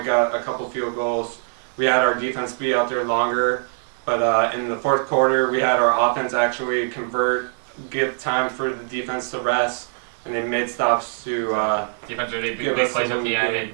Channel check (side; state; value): left; silent; digital silence